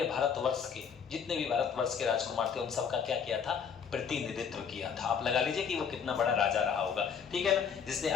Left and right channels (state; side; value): quieter; right; 7.0 dB